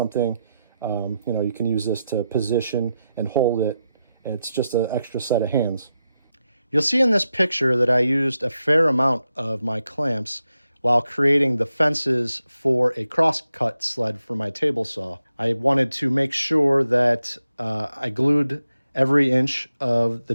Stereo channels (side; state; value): both; inverted; correlation -0.87